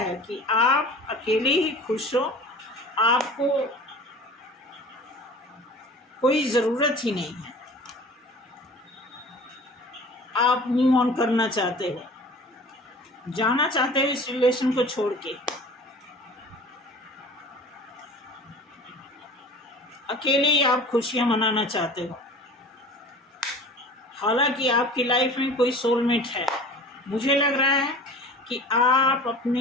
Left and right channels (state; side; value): normal; both; correlation 0.42